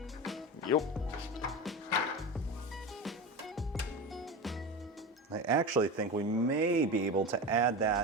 Yep. I actually think we may be able to add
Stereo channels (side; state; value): both; normal; correlation 0.25